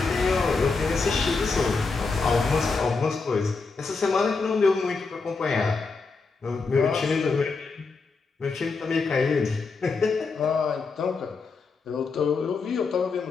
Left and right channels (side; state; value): right; quieter; 4.3 dB